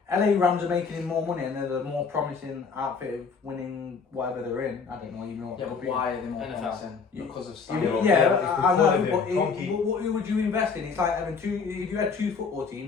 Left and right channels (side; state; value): right; quieter; 5.3 dB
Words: LA Rams are making him more money and they're the more promising outfit of winning whatever they're in, I don't know even what Yeah, they'll but be. why are they more NFL. promising? You- Because of Yeah, Stan. Yeah, yeah, it's I know, because of but him. Kroenke- who would you invest in? It's like having if you had 2 football